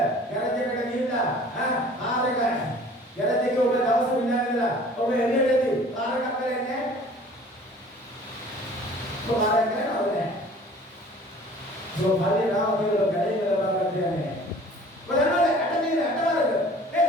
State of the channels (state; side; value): normal; both; correlation 0.48